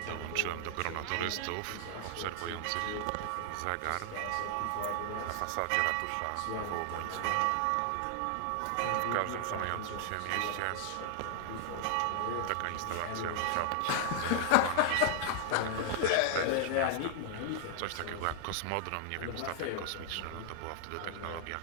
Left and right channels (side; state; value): both; different; correlation 0.00